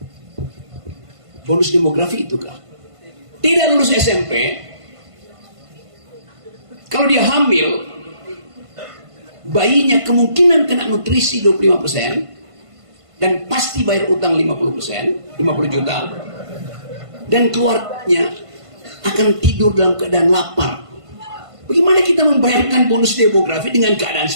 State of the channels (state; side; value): late; left; 1.5 ms